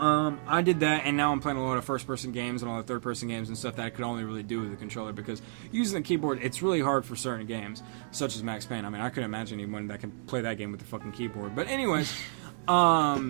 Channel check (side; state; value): left; silent; digital silence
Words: I did that, and now I'm playing a lot of first-person games and a lot of third-person games and stuff that I could only really do with the controller, because using the keyboard, it's really hard for certain games, such as Max Payne. I mean, I couldn't imagine anyone that can play that game with the fucking keyboard. But anyways,